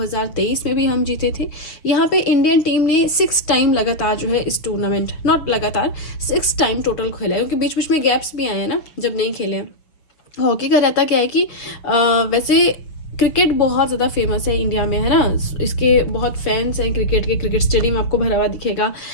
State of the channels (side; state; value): right; late; 6.5 ms